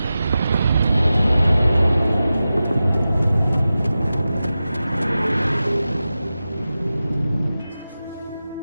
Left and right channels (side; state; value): both; inverted; correlation -0.94